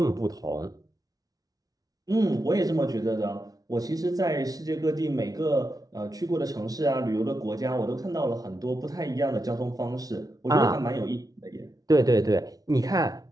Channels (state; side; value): late; left; 0.18 ms